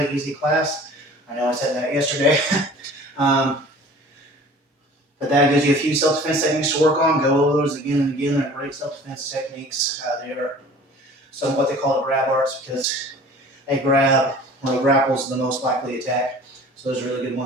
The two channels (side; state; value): both; normal; correlation 0.46